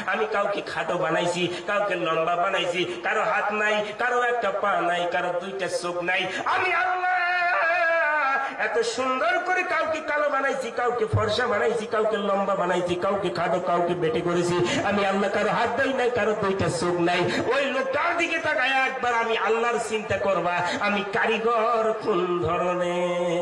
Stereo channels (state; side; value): identical; both; correlation 1.00